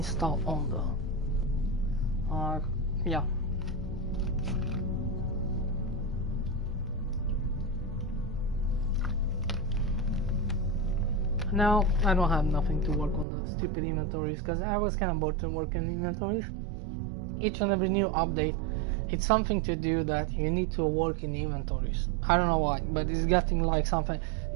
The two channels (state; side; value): drops out; left; at 13.2 s